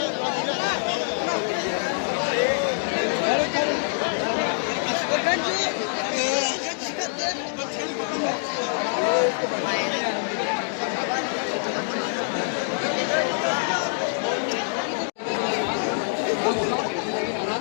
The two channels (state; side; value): silent; right; digital silence